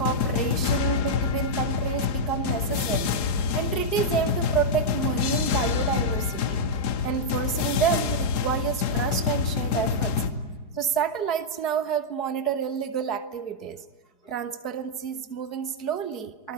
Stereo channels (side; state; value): right; late; 4.7 ms